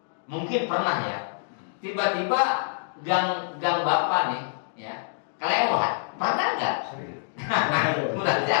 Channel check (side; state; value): right; silent; digital silence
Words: mungkin pernah ya, tiba-tiba gang Bapak nih ya kelewat, pernah nggak? Udah